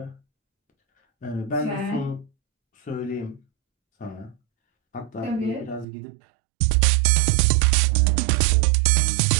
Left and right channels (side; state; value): left; drops out; at 5.9 s